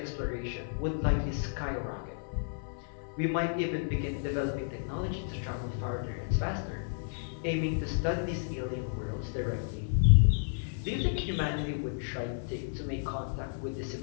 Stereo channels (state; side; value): silent; right; 56 dB below the other